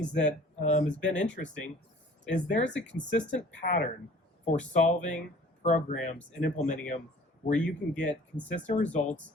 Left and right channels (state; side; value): normal; both; correlation 0.50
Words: that has been interesting is there's a consistent pattern for solving programs and implementing them where you can get consistent results